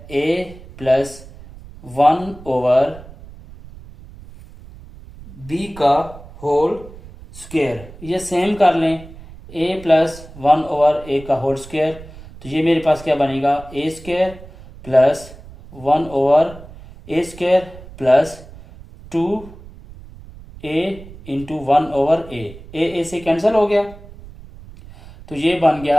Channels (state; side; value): noise; right; rumble, 18 dB below the sound